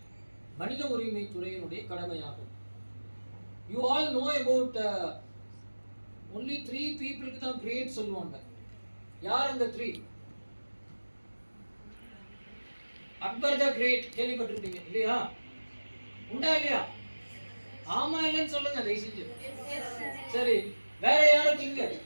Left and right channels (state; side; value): inverted; both; correlation -1.00